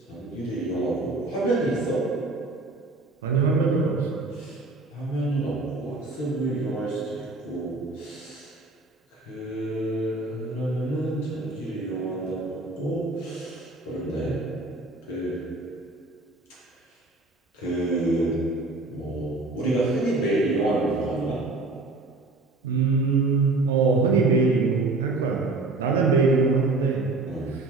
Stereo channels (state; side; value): quieter; left; 3.2 dB